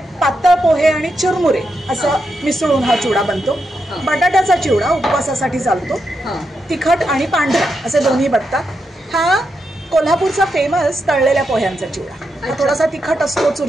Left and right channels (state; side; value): normal; both; correlation 0.84